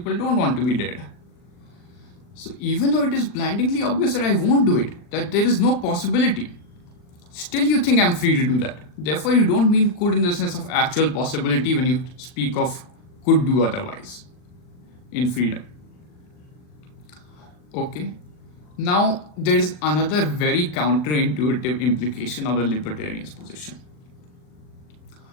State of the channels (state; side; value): late; right; 40 ms